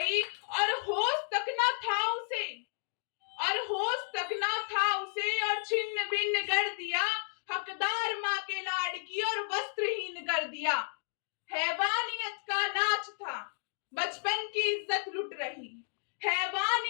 और होश तक ना था उसे, और होश तक ना था उसे, और छिन्न भिन्न कर दिया, हकदार माँ के लाडकी और वस्त्रहीन कर दिया, हैवानियत का नाच था बचपन की इज्जत लुट रही,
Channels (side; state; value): right; silent; 56 dB below the other